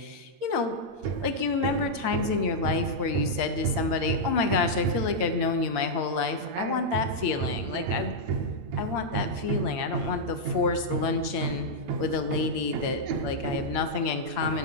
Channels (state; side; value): late; left; 8.7 ms